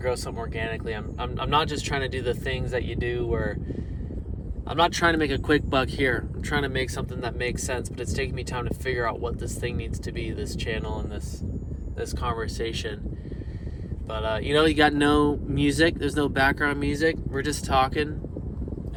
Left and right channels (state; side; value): identical; both; correlation 1.00